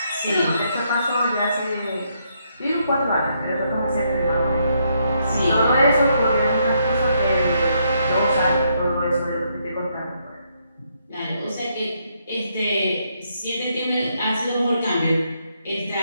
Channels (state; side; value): inverted; both; correlation -0.75